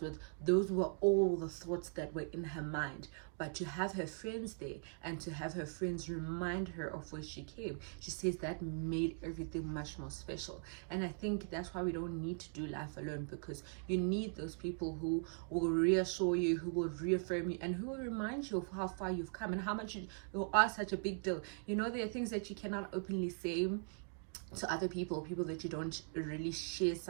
Those were all the thoughts that were in her mind. But to have her friends there, and to have her friends remind her of where she came, she says that made everything much more special. And I think that's why we don't need to do life alone, because you need those people who will reassure you, who will reaffirm you, and who will remind you of how far you've come and how much you are such a big deal. You know, there are things that you cannot openly say to other people that you don't really share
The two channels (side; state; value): left; silent; 51 dB below the other